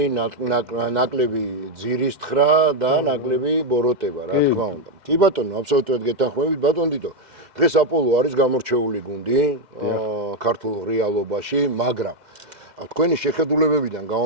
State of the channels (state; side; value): late; left; 2.0 ms